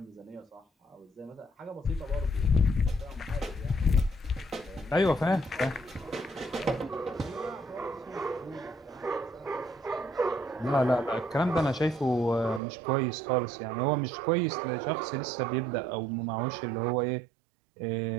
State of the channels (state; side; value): drops out; left; at 12.6 s